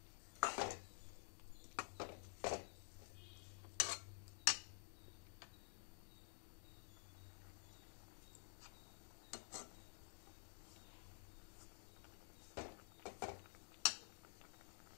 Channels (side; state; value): right; silent; digital silence